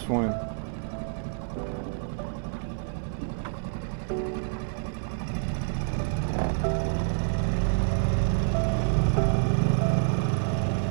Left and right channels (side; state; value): left; silent; 58 dB below the other